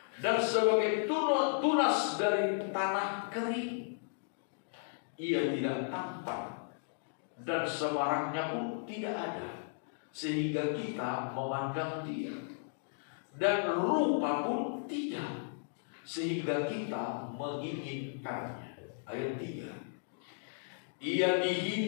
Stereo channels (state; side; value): silent; right; digital silence